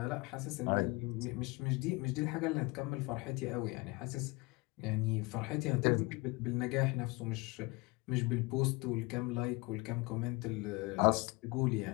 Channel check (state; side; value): quieter; right; 25.6 dB